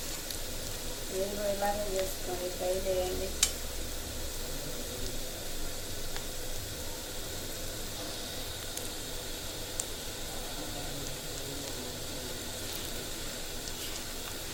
మీరు కూడా ఇలాగే చేసుకోండి, ట్రై చేయండి.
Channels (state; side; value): identical; both; correlation 1.00